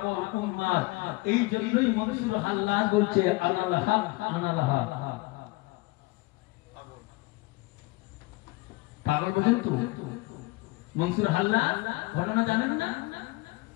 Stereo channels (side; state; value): right; quieter; 22.7 dB